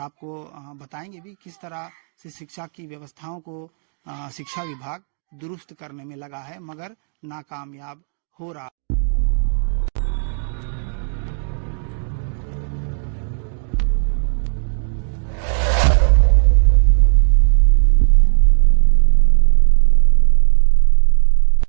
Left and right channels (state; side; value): silent; left; 61 dB below the other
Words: बताएंगे भी किस तरह से शिक्षा की व्यवस्थाओं को शिक्षा विभाग दुरुस्त करने में लगा है, मगर नाकामयाब हो रहा।